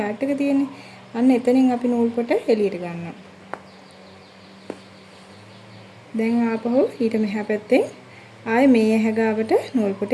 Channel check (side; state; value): both; identical; correlation 1.00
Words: එක තියෙන්නේ. අන්න එතනින් අපි නූල් පොට එළියට ගන්නවා. දැන් ආපහු ඊට මෙහා පැත්තේ ආයේ මේ ඇහැ ගාවට නූල් පොට